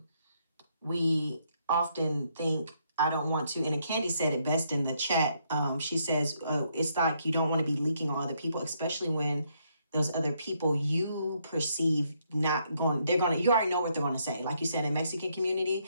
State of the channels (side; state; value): both; inverted; correlation -0.74